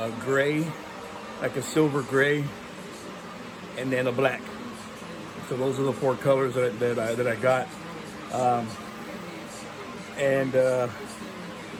gray, like a silver gray, and then a black. So those are the 4 colors that I got. And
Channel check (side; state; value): both; identical; correlation 1.00